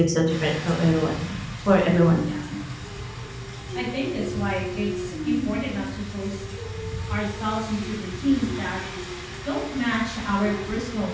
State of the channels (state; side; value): identical; both; correlation 1.00